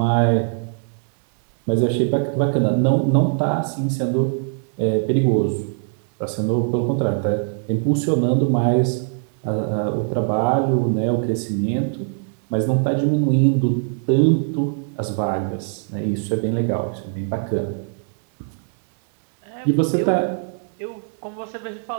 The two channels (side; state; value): left; silent; 65 dB below the other